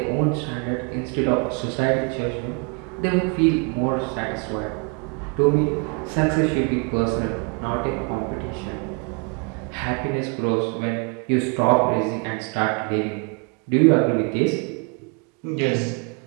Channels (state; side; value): quieter; left; 35.0 dB